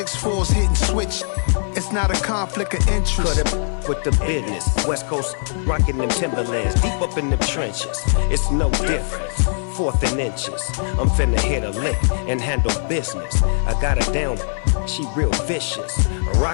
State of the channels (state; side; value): silent; right; 65 dB below the other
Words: hitting switch. It's not a conflict of interest. Cut it with the business. West Coast rocking them Timberlands, deep up in them trenches. It's no difference. Fourth and inches. I'm finna hit a lick and handle business. I got her down, she real vicious.